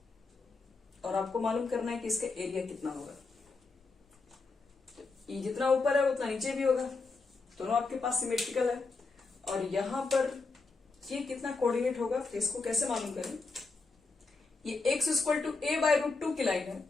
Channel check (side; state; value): right; quieter; 4.0 dB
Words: और आपको मालूम करना है कि इसका एरिया कितना होगा। तो ये जितना ऊपर है उतना नीचे भी होगा, दोनों आपके पास सिमेट्रिकल है। और यहां पर ये कितना कोऑर्डिनेट होगा, तो इसको कैसे मालूम करें, ये x इक्वल टू a/√2 की लाइन है,